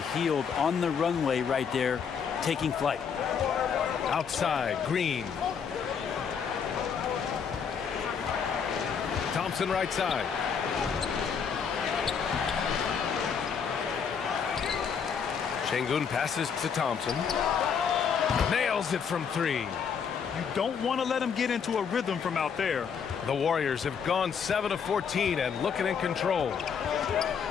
Hield on the runway right there, taking flight. Outside, Green. Thompson right side. Şengün passes to Thompson. Nails it from three. You don't want to let him get into a rhythm from out there. The Warriors have gone 7 of 14 and looking in control.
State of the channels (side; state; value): right; quieter; 6.8 dB